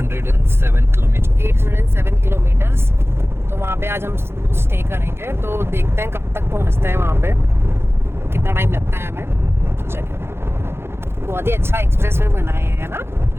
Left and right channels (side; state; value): left; late; 0.12 ms